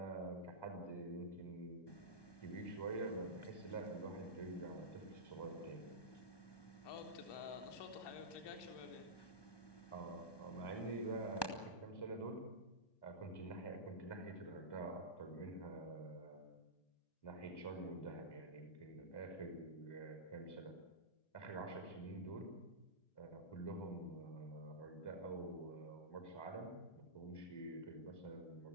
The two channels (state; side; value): late; right; 1.2 ms